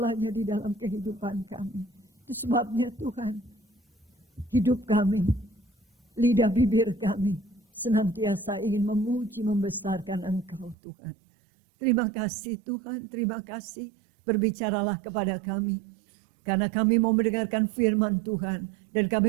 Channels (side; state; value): left; drops out; at 10.8 s